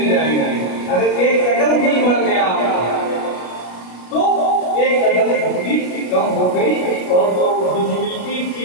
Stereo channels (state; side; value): late; right; 33 ms